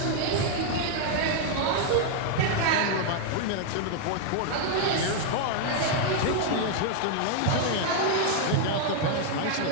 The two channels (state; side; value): different; both; correlation 0.00